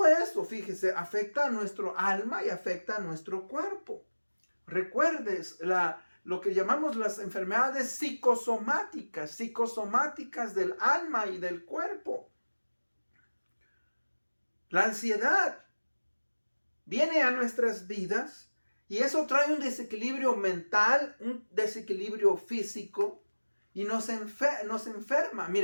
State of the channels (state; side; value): inverted; both; correlation -1.00